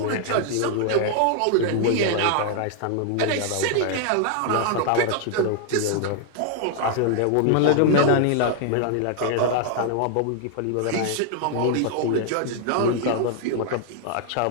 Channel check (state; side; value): different; both; correlation 0.00